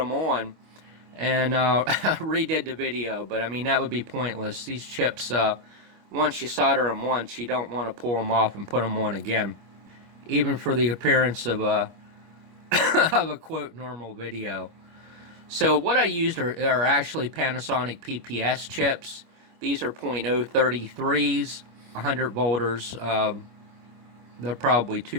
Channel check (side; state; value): left; late; 25 ms